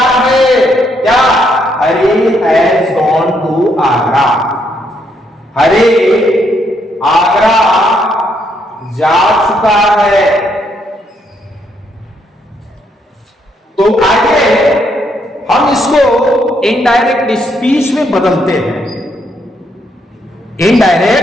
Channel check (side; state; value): both; normal; correlation 0.74